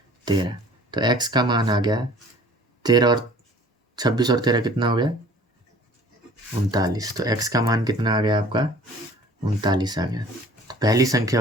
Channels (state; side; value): normal; both; correlation 0.49